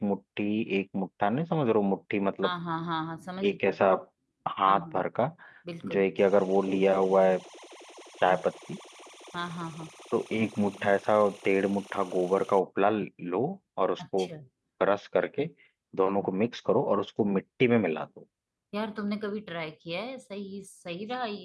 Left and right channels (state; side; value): identical; both; correlation 1.00